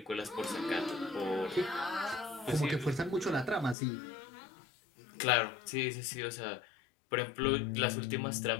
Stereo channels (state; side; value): drops out; right; at 3.8 s